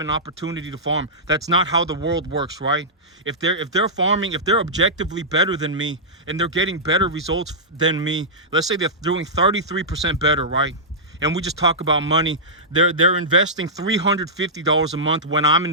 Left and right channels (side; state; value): both; normal; correlation -0.13